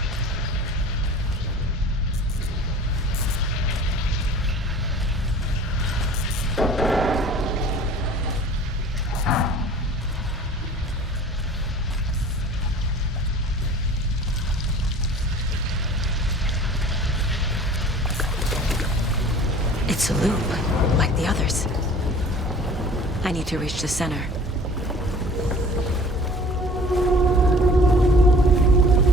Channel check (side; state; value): both; normal; correlation 0.45